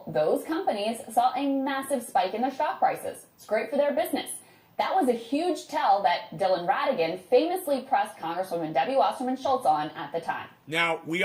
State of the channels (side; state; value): both; identical; correlation 1.00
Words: those companies saw a massive spike in their stock prices. It's great for their business. That was a huge tell that Dylan Ratigan famously pressed Congresswoman Debbie Wasserman Schultz on at the time. Now, we